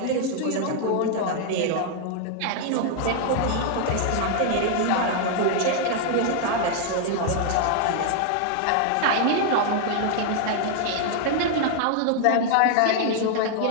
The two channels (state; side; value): different; both; correlation 0.00